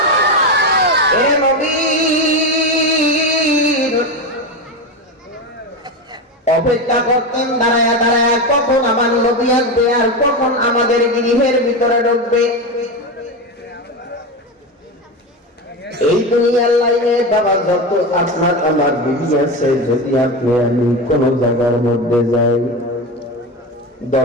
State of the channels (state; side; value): normal; both; correlation 0.18